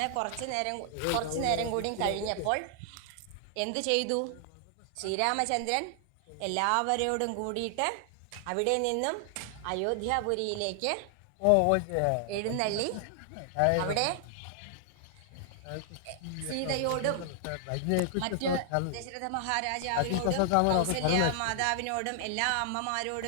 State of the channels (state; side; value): different; both; correlation 0.00